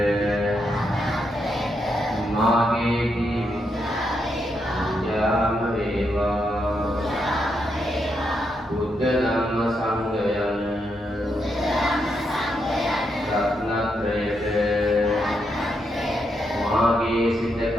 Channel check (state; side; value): normal; both; correlation 0.81